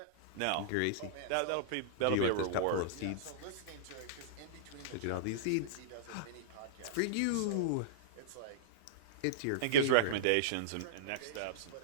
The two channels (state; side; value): different; both; correlation -0.02